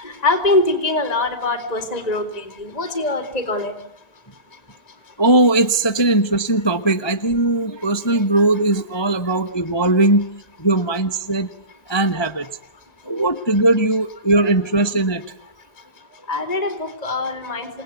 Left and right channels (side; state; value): right; late; 1.3 ms